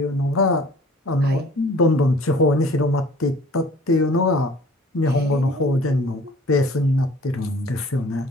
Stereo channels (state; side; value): normal; both; correlation 0.50